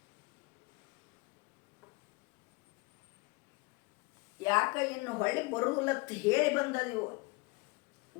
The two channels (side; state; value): right; quieter; 25.4 dB